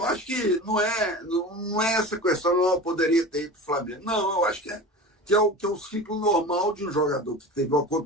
acho que não é essa questão, não poderia ter ido para o Flamengo. Não, eu acho que é o ciclo normal de um jogador que teve uma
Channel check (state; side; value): normal; both; correlation 0.33